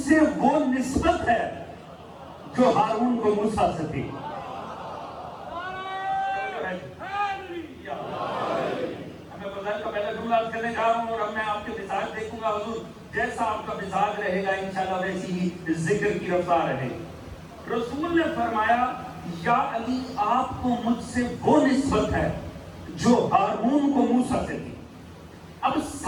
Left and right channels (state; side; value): identical; both; correlation 1.00